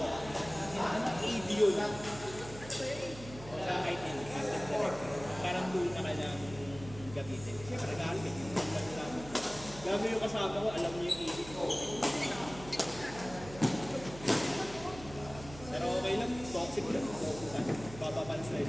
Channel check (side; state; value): right; noise; hum, 14 dB below the sound